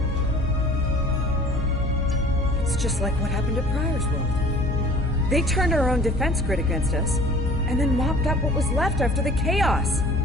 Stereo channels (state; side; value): normal; both; correlation 0.47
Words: It's just like what happened at Pryor's World. They turned our own defense grid against us, and then mopped up what was left after the chaos.